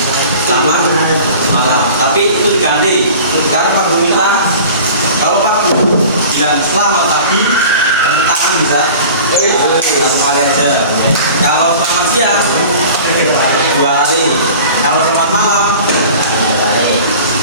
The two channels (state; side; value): inverted; both; correlation -0.41